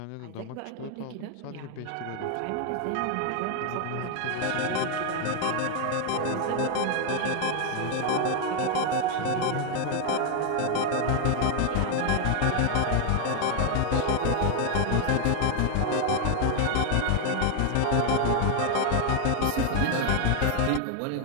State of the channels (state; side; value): different; both; correlation 0.00